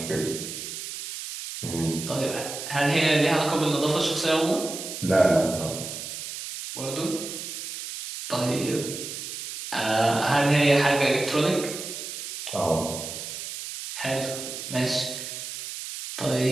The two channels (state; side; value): noise; right; hiss, 8 dB below the sound